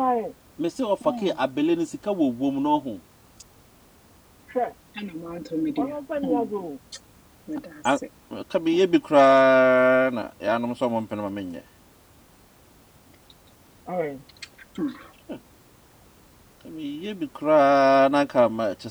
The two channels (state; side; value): identical; both; correlation 1.00